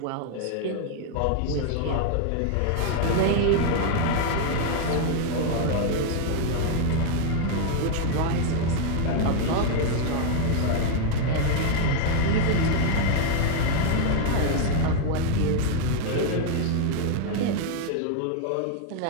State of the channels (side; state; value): both; different; correlation 0.00